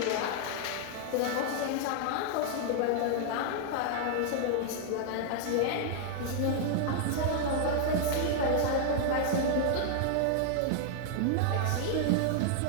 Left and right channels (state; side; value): different; both; correlation 0.00